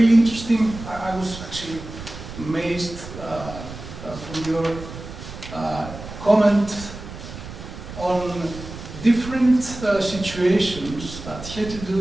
interesting. I was actually amazed from your comment on different situations that had to do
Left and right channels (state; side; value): noise; right; rumble, 12 dB below the sound